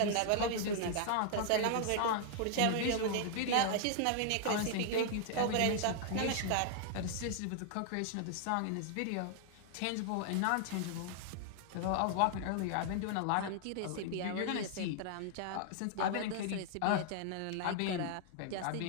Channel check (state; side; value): different; both; correlation 0.00